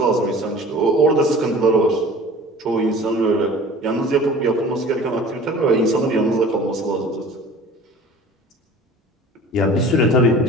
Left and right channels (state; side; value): normal; both; correlation 0.44